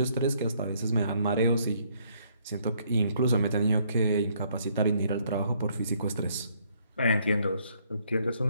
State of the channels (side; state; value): both; inverted; correlation -0.68